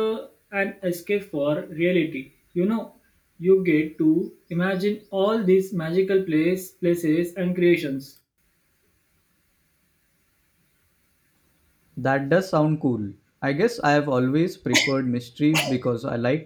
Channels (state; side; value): identical; both; correlation 1.00